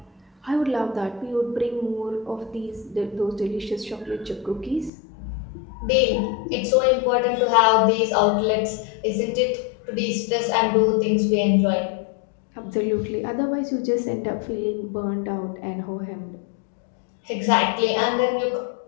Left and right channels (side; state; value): right; drops out; at 4.9 s